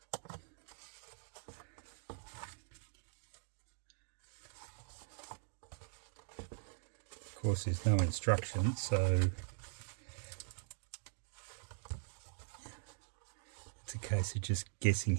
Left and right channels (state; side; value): silent; left; digital silence